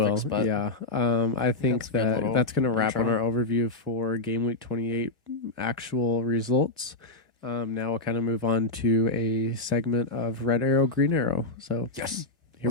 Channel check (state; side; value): quieter; right; 3.1 dB